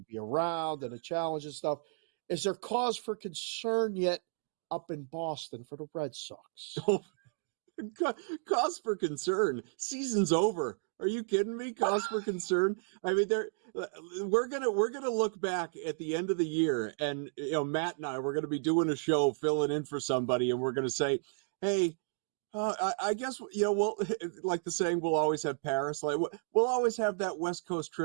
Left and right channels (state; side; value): silent; left; digital silence